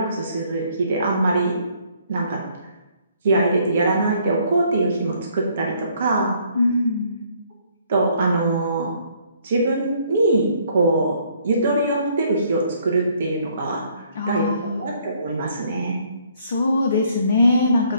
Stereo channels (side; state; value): both; inverted; correlation -0.65